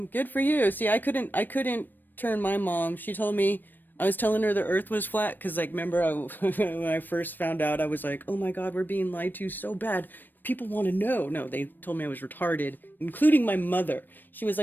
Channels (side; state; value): right; late; 0.092 ms